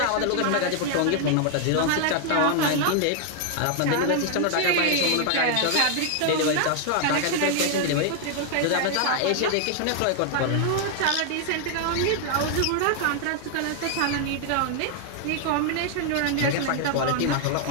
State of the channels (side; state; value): both; different; correlation 0.00